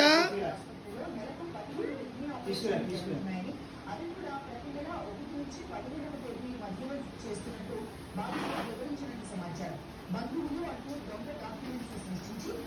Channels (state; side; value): identical; both; correlation 1.00